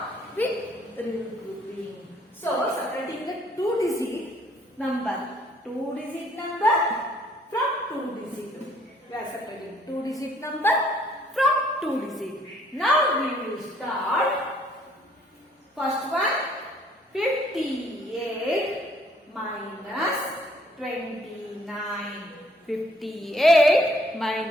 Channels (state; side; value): normal; both; correlation 0.63